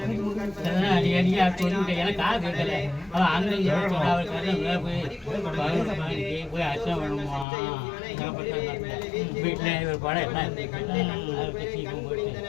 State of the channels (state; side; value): drops out; right; at 7.5 s